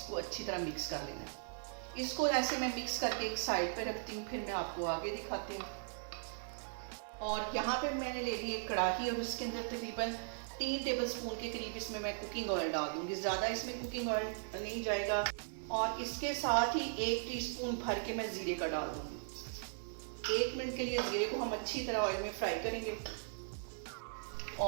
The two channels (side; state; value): left; silent; 52 dB below the other